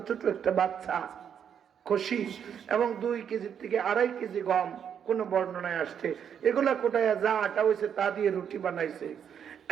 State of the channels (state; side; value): quieter; left; 8.2 dB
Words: ছোট একটা বাচ্চা কষি এবং 2 কেজি থেকে 2.5 কেজি গম, কোন বর্ণনায় আসছে, এগুলা কোটায় যা আটা হয়েছে তা দিয়ে রুটি বানাইছে।